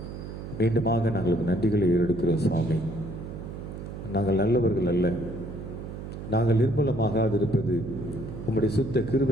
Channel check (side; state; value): right; noise; hum, 9 dB below the sound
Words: மீண்டுமாக நாங்கள் நன்றிகளை ஏறெடுக்கிறோம் சுவாமி. நாங்கள் நல்லவர்கள் அல்ல, நாங்கள் நிர்மூலமாகாதிருப்பது உம்முடைய சுத்த